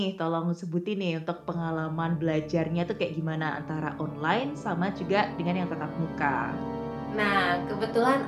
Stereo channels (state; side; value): identical; both; correlation 1.00